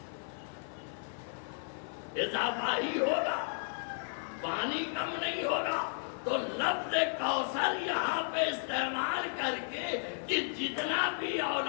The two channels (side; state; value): right; silent; 55 dB below the other